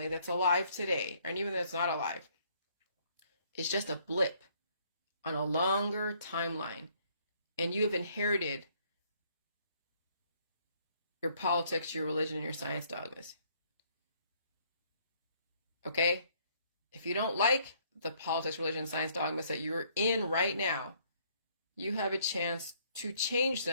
that's alive today, and even that's not alive, is just a blip on a longer timeline. And you have inherited your politics, your religion, and your science dogmas. Okay? If you don't like the politics, religion, and science dogmas that you're in right now, you have a chance to change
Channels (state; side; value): inverted; both; correlation -0.65